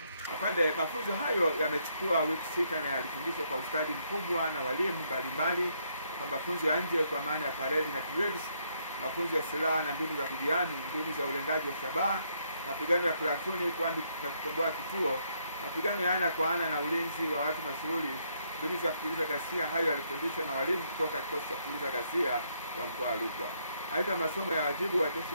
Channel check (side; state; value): both; inverted; correlation -0.73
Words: Afande, mafunzo hayo yamechukua wiki 6 na yalifundishwa kwa ustadi mkubwa na walimu mbalimbali kwa mafunzo ya nje kwa maana ya parade na drills, mafunzo ya silaha na mbinu za kujihami, mbinu za ulengaji wa shabaha, mapigano ya platuni na kukomboa kituo, mapigano ya ana kwa ana na ulinzi wa watu mashuhuri, mbinu za kupuliza ghasia. Hayo yalifundishwa na walimu kutoka kikosi cha kupuliza ghasia wa mkoa wa Rukwa. Aidha, masomo ya wajibu wa jeshi